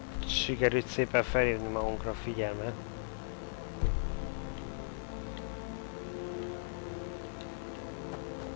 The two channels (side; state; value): right; silent; 53 dB below the other